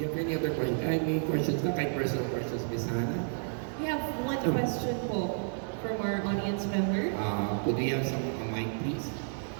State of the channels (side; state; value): left; silent; 57 dB below the other